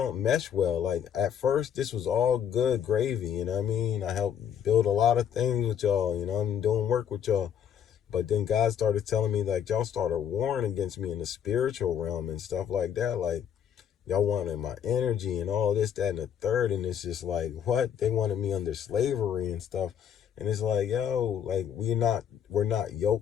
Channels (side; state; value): right; quieter; 8.8 dB